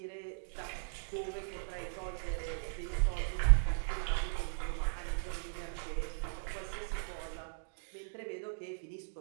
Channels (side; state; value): left; silent; digital silence